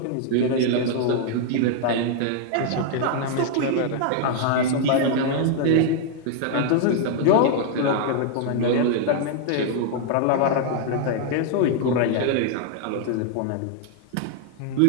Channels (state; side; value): different; both; correlation 0.00